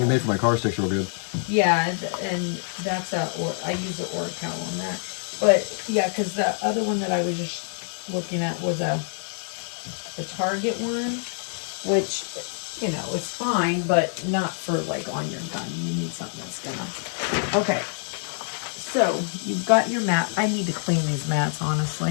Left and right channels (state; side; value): silent; right; 61 dB below the other